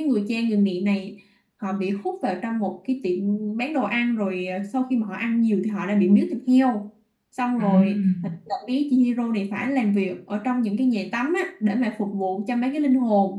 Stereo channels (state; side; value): identical; both; correlation 1.00